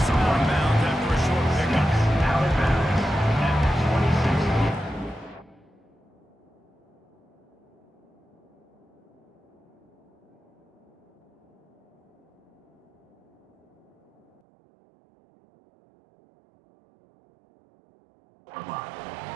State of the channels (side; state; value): left; drops out; at 14.4 s